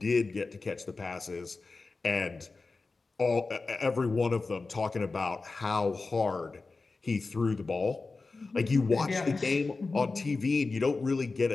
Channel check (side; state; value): right; quieter; 3.9 dB